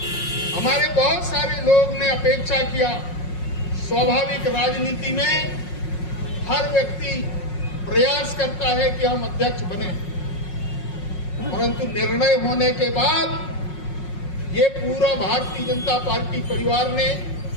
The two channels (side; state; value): right; late; 5.5 ms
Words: हमारे बहुत सारे लोग ने अपेक्षा किया। स्वाभाविक राजनीति में हर व्यक्ति प्रयास करता है कि हम अध्यक्ष बने, परंतु निर्णय होने के बाद ये पूरा भारतीय जनता पार्टी परिवार ने